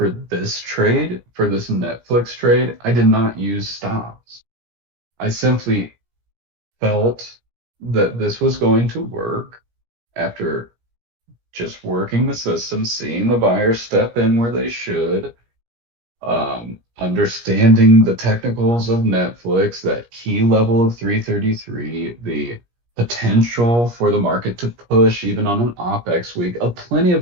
this trade, for this Netflix trade, I did not use stops. I simply felt that this was going to work after just working the system, seeing the buyers step in where they should, understanding the technicals of Netflix, that key level of 333, the potential for the market to push even on an OPEX week. Plenty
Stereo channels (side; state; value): left; late; 17 ms